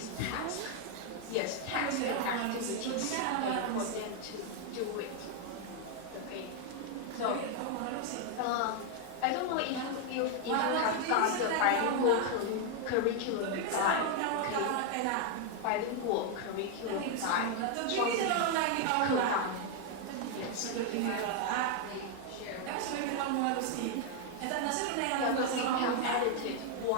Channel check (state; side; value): different; both; correlation 0.01